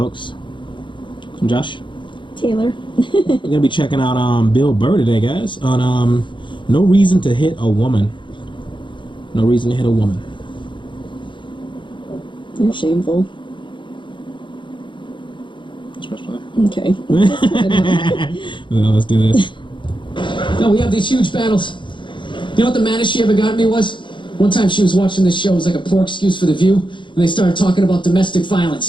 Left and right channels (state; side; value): late; right; 0.23 ms